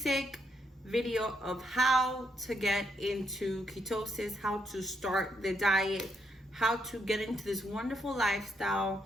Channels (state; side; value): normal; both; correlation 0.77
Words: video of how to get into ketosis, how to start the diet, how to get into this wonderful lifestyle